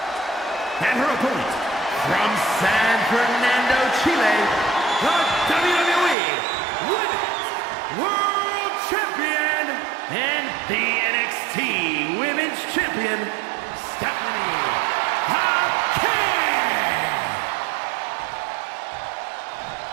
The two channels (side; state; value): left; drops out; at 6.2 s